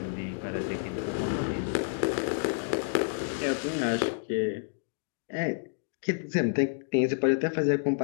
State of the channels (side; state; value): right; silent; digital silence